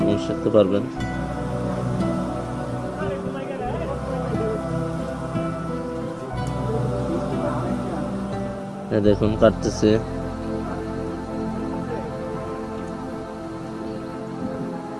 এবং শিখতে পারবেন। দেখুন কাটতেছি,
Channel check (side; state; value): both; identical; correlation 1.00